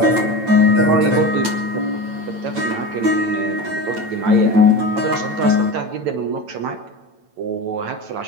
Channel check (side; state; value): left; late; 9.0 ms